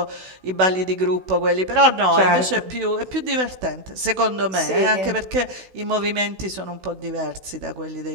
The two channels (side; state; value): left; late; 16 ms